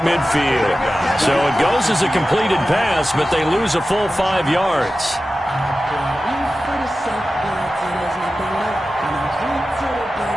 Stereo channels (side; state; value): both; normal; correlation 0.94